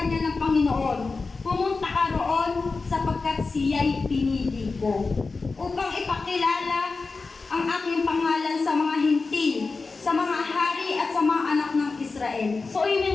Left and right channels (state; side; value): quieter; right; 4.1 dB